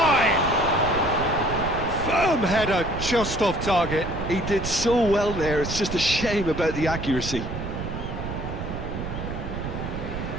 Firm header just off target. He did so well there, it's just a shame about the accuracy.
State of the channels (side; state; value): right; noise; rumble, 6 dB below the sound